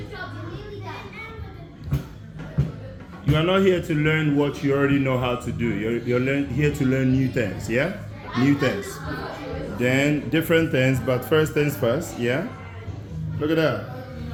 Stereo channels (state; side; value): identical; both; correlation 1.00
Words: your job. You're nearly done. You are not here to learn what you already know how to do. You're here to learn new things, yeah? New things. Then different things, but first things first, yeah? Look at that.